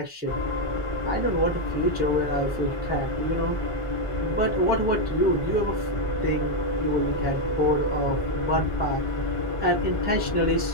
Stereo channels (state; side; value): normal; both; correlation 0.03